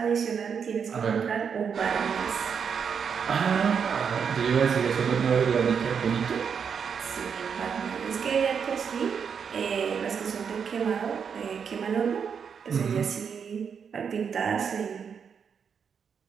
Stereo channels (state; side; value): quieter; left; 6.8 dB